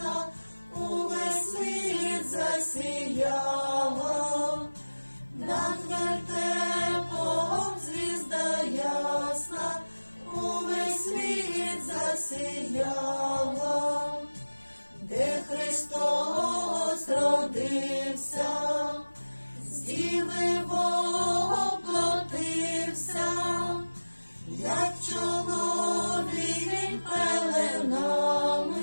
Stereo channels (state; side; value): inverted; both; correlation -1.00